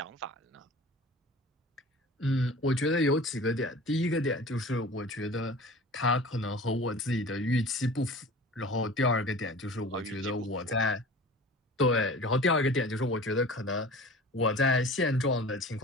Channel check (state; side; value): normal; both; correlation 0.40